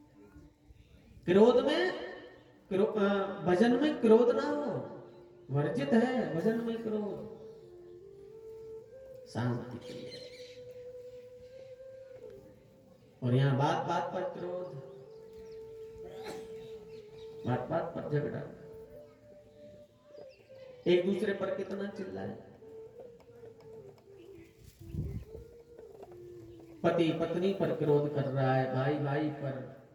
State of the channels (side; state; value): both; identical; correlation 1.00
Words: क्रोध में भजन में क्रोध ना हो, वर्जित है भजन में क्रोध, शांति प्रिय। और यहां बात बात पर क्रोध, बात बात पर झगड़ा, एक दूसरे पर कितना चिल्लाए, पति पत्नी पर क्रोध कर रहा है, भाई भाई पर,